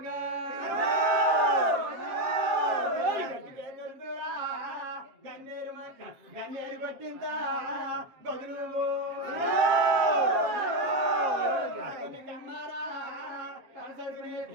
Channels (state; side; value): late; left; 7.5 ms